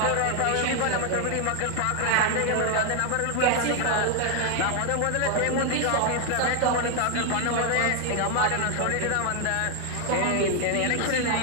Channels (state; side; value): different; both; correlation 0.00